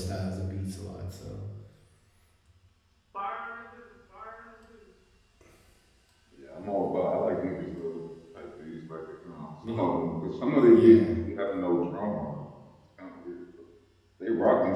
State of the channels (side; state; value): both; identical; correlation 1.00